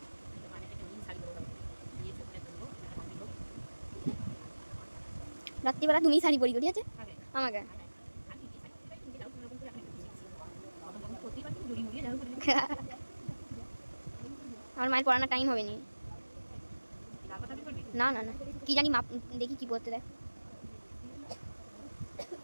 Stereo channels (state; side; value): inverted; both; correlation -1.00